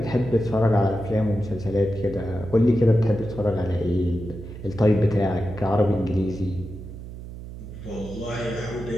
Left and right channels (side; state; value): right; noise; hum, 12 dB below the sound